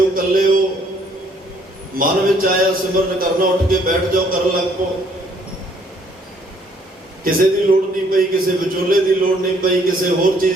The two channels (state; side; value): normal; both; correlation 0.64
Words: ਇਕੱਲੇ ਹੋ, ਮਨ ਵਿੱਚ ਆਇਆ ਸਿਮਰਨ ਕਰਨਾ, ਉੱਠ ਕੇ ਬੈਠ ਜਾਓ, ਕਰਨ ਲੱਗ ਪਓ। ਕਿਸੇ ਦੀ ਲੋੜ ਨਹੀਂ ਪਈ, ਕਿਸੇ ਵਿਚੋਲੇ ਦੀ ਲੋੜ ਨਹੀਂ ਪਈ, ਕਿਸੇ ਹੋਰ